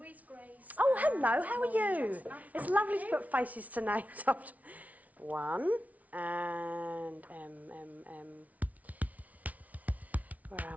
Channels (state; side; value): late; left; 0.071 ms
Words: Grace. Oh, hello. How are you? It's lovely to put faces to names after. 1 and Where